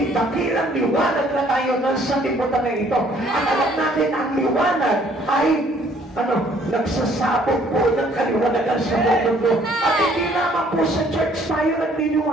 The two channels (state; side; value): normal; both; correlation 0.61